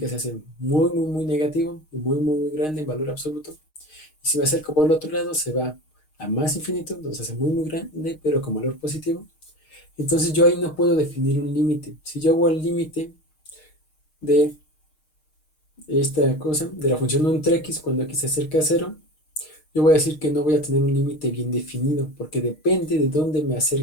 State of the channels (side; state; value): right; late; 6.5 ms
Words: se hace muy, muy, muy negativo y muy, muy, muy grande en valor absoluto, y si me acerco por el otro lado, se va a más infinito, donde se hace muy, muy grande, pero con valor positivo. Entonces yo ahí no puedo definir un límite. Si yo hago el límite de esta cosa, de la función 1 entre x, cuando x se acerca a 0, yo voy a decir que no voy a tener un límite bien definido, porque depende de dónde me